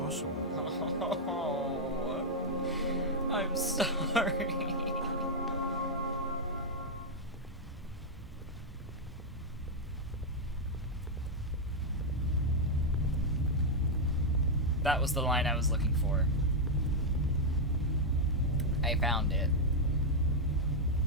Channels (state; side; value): normal; both; correlation -0.01